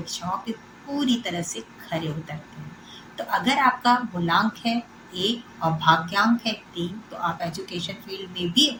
पे पूरी तरह से खरे उतरते हैं। तो अगर आपका मूलांक है 1 और भाग्यांक है 3, तो आप एजुकेशन फील्ड में भी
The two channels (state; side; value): identical; both; correlation 1.00